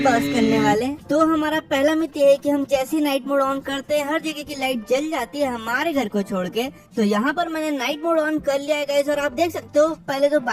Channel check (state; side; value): identical; both; correlation 1.00